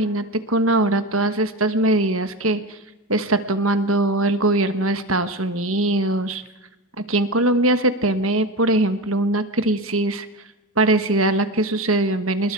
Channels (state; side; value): normal; both; correlation 0.23